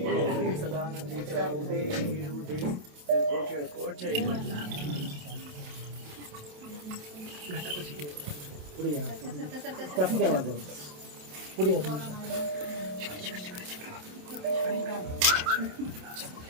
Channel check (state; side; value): late; left; 27 ms